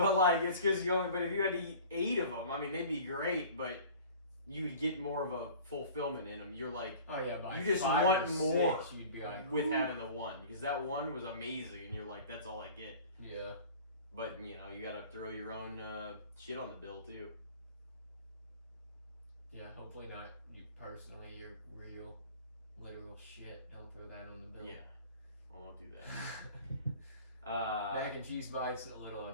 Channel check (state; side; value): inverted; both; correlation -0.43